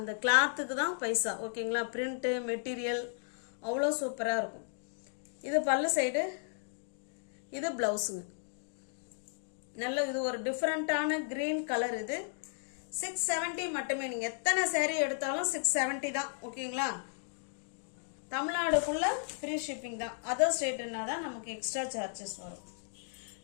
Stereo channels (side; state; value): right; silent; digital silence